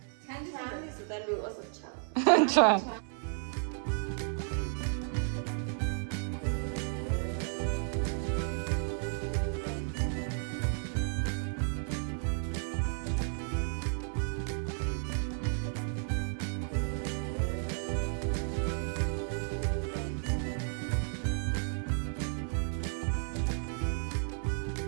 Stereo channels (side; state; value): left; silent; 56 dB below the other